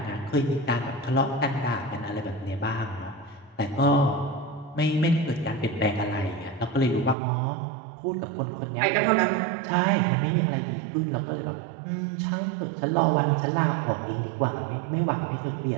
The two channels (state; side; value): drops out; left; at 7.2 s